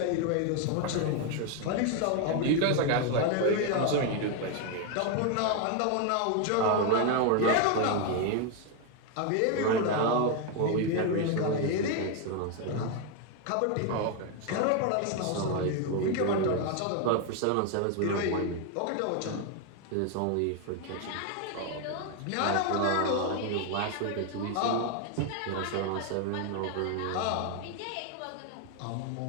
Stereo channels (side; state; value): both; different; correlation 0.01